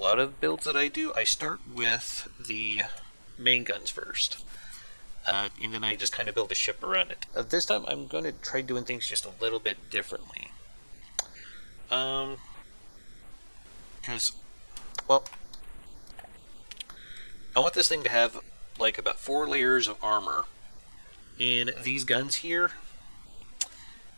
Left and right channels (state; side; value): inverted; both; correlation -1.00